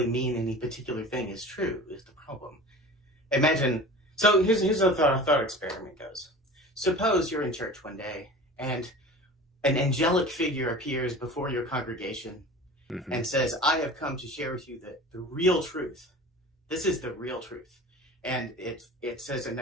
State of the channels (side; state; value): both; normal; correlation 0.38